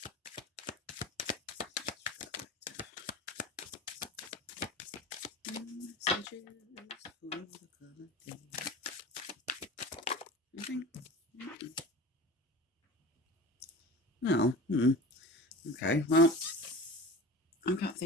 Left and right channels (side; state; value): both; normal; correlation 0.35